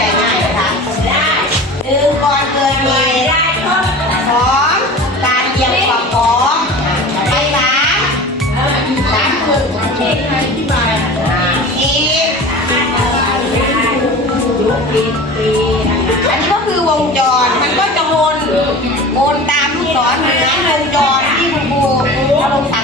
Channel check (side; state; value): both; normal; correlation 0.36